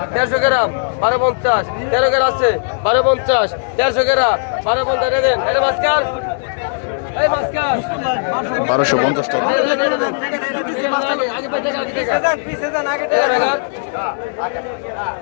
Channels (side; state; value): right; silent; digital silence